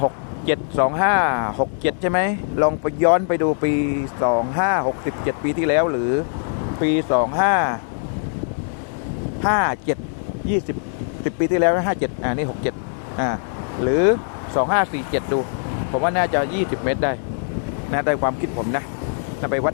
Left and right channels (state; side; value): silent; right; digital silence